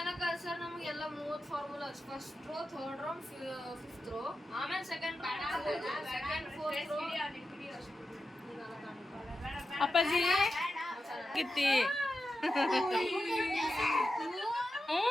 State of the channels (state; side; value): normal; both; correlation 0.91